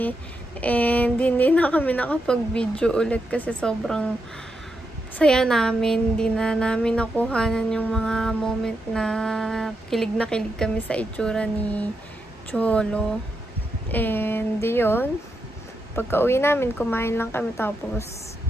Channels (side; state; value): both; normal; correlation 0.84